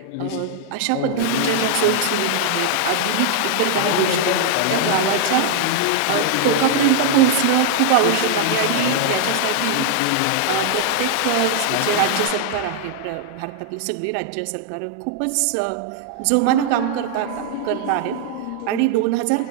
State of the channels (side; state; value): both; different; correlation -0.01